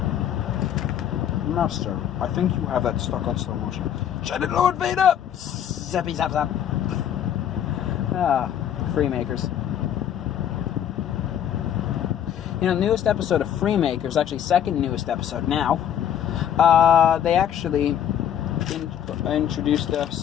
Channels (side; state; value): right; quieter; 9.8 dB